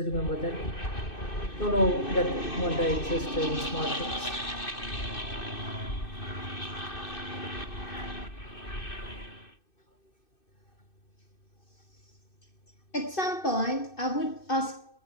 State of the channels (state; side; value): late; right; 2.6 ms